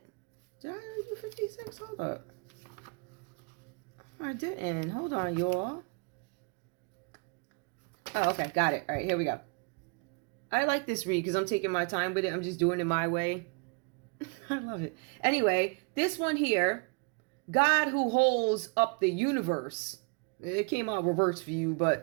Did I already do 56? Hold up. I didn't. Hold on, y'all. Oh, okay. Got it. All right, here we go. I like this read because I'm taking my time with it. I'm just doing it my way. I love it. Anyway, this one here, God who holds up the universe. It came out reverse for you,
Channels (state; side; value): quieter; left; 33.5 dB